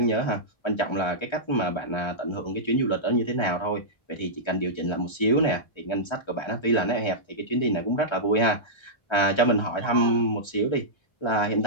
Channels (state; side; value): late; right; 1.3 ms